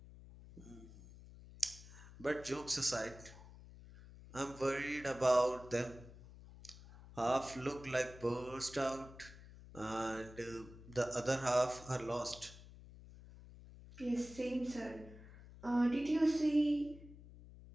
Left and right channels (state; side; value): noise; left; hum, 17 dB below the sound